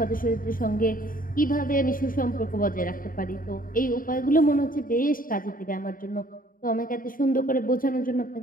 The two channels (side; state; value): right; late; 0.41 ms